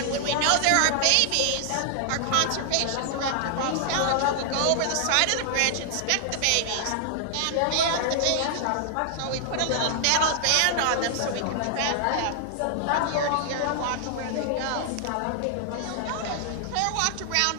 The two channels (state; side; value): different; both; correlation -0.01